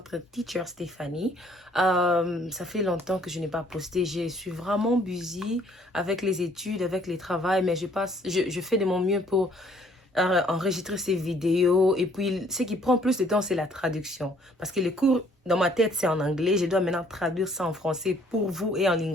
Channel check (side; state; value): both; normal; correlation 0.62